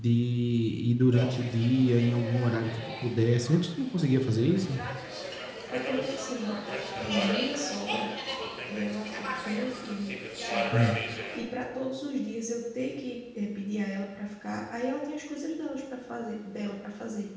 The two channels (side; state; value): both; identical; correlation 1.00